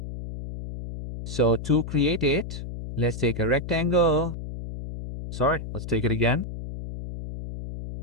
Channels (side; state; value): left; noise; hum, 8 dB below the sound